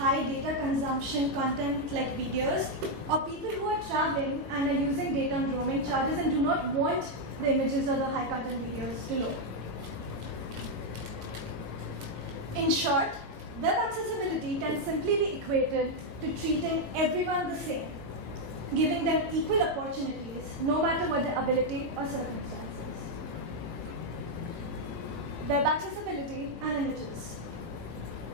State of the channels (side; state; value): left; late; 18 ms